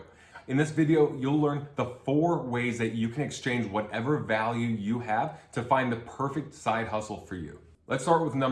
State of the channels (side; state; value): both; identical; correlation 1.00